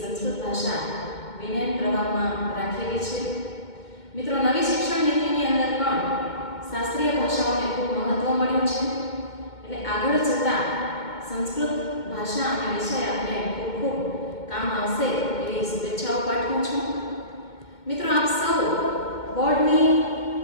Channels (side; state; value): right; late; 2.2 ms